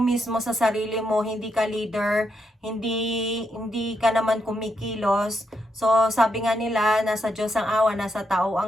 sa sarili mo, hindi ka leader, hindi ka naman kumikilos, so sabi nga nila, nasa Diyos ang awa, nasa tao ang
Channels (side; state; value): both; normal; correlation 0.81